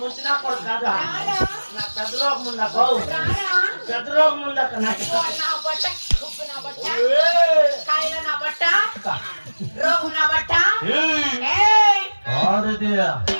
ముంచినా కూడా కాదా నాకు పెద్ద రోగం ఉందాక పెద్ద రోగం ఉందాక నాకు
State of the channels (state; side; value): inverted; both; correlation -1.00